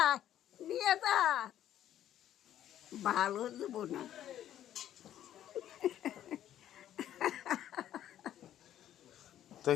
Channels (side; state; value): right; quieter; 11.5 dB